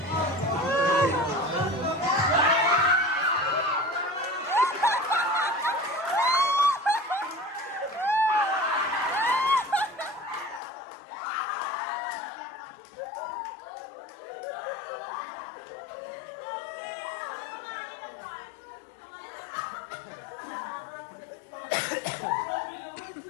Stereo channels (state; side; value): drops out; right; at 10.6 s